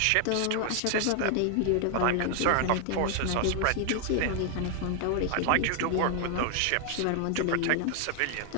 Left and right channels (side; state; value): both; different; correlation 0.00